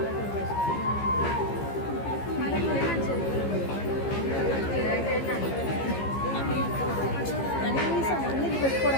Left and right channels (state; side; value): late; right; 15 ms